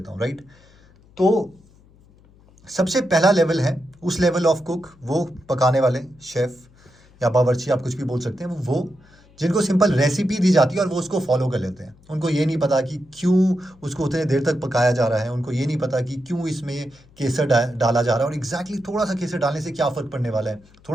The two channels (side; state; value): left; noise; hum, 28 dB below the sound